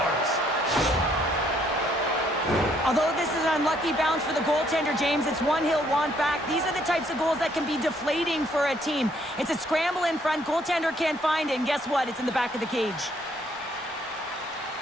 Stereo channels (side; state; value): both; normal; correlation 0.67